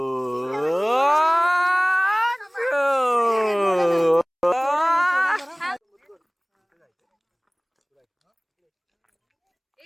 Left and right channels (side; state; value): both; identical; correlation 1.00